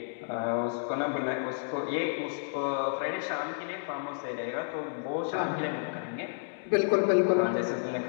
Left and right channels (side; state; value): right; silent; digital silence